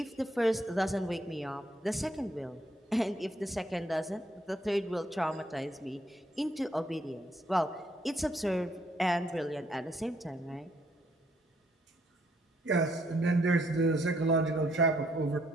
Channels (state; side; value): normal; both; correlation 0.70